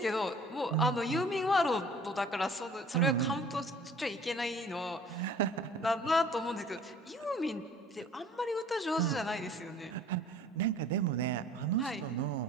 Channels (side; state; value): both; normal; correlation 0.51